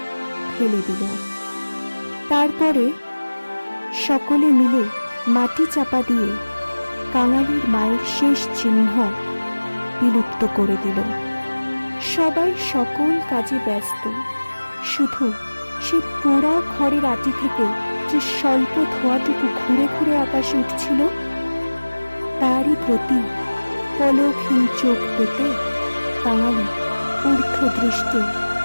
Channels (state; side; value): inverted; both; correlation -1.00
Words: ফেলে দিল। তারপরে সকলে মিলে মাটি চাপা দিয়ে কাঙালির মায়ের শেষ চিহ্ন বিলুপ্ত করে দিল। সবাই সকল কাজে ব্যস্ত, শুধু সেই পোড়া খড়ের আটি থেকে যে স্বল্প ধোঁয়াটুকু ঘুরে ঘুরে আকাশে উঠছিল তারই প্রতি পলকহীন চোখ পেতে কাঙালি ঊর্ধ্ব দৃষ্টে